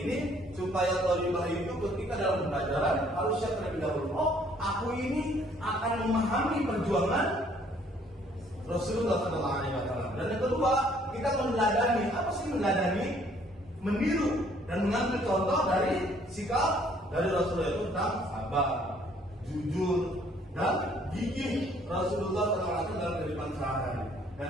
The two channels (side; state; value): both; normal; correlation 0.62